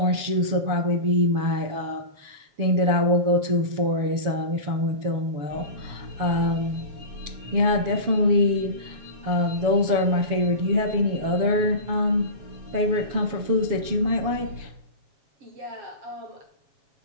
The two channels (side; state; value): left; late; 7.0 ms